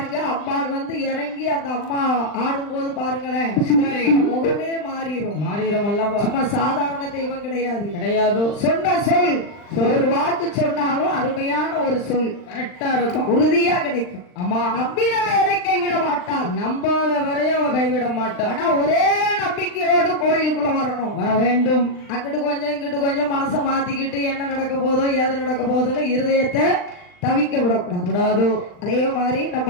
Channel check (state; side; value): late; right; 39 ms